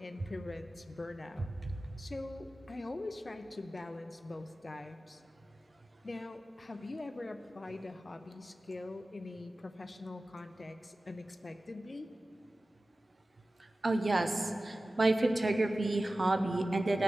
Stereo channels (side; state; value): both; normal; correlation 0.96